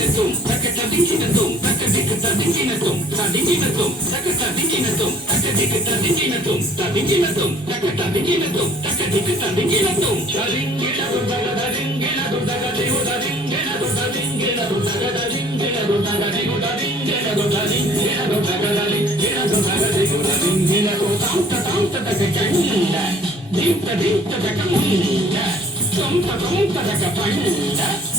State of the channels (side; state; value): both; normal; correlation 0.55